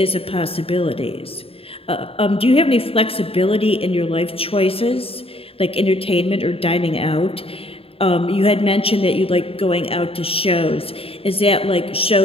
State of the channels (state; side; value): late; right; 0.27 ms